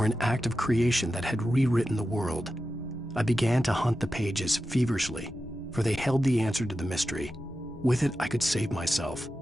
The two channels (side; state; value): both; normal; correlation 0.91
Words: an act of creation that had rewritten the world. I began to hunt the pages feverishly, for they held the answer to the mystery. With it, I could save myself.